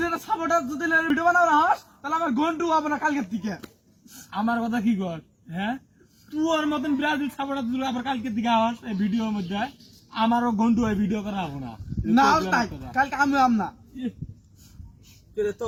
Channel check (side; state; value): both; identical; correlation 1.00